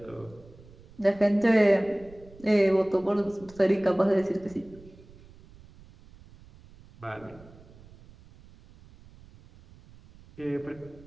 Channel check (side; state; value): right; noise; rumble, 23 dB below the sound